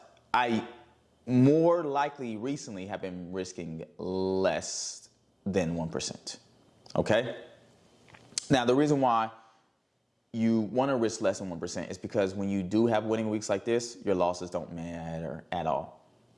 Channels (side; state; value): both; identical; correlation 1.00